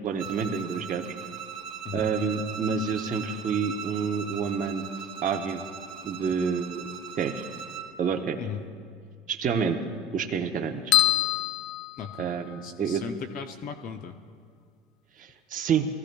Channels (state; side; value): normal; both; correlation 0.37